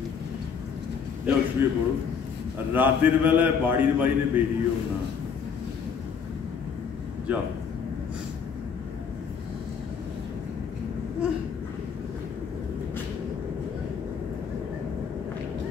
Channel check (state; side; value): quieter; right; 6.4 dB